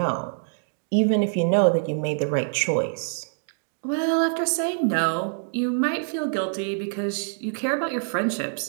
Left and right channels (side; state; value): left; silent; digital silence